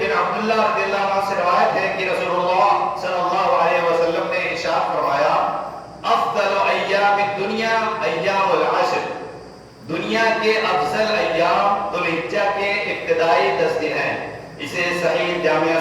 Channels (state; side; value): identical; both; correlation 1.00